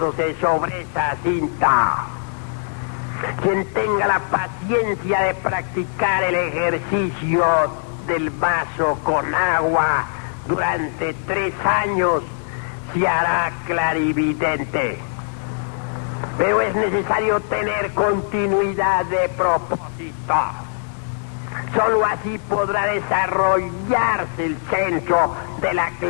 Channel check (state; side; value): silent; right; digital silence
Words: sobre esa cinta. Quien tenga la paciencia de practicar el ejercicio del vaso con agua durante 3 años se hará clarividente. Pero es necesario tener continuidad de propósito. Solo así podrá desarrollarse el centro de la